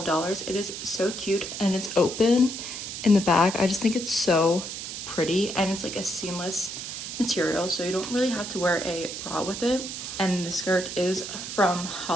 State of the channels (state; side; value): noise; right; hiss, 7 dB below the sound